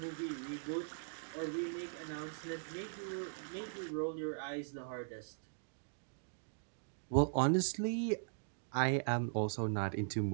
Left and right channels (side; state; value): left; silent; digital silence